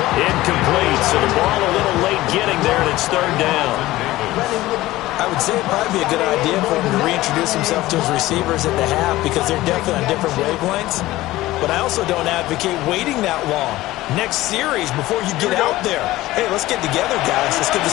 Incomplete, so the ball a little late getting there, and it's 3rd down. I would say it'd probably be a good idea for him to reintroduce himself to his receivers at the half because they're definitely on different wavelengths. But I also don't advocate waiting that long. Next series before you get out there. Hey, let's get together, guys. Let's get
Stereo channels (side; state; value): right; quieter; 17.1 dB